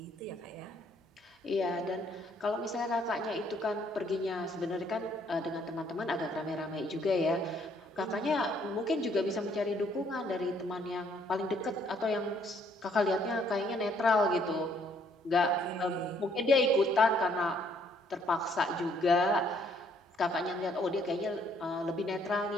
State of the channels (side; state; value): both; normal; correlation 0.66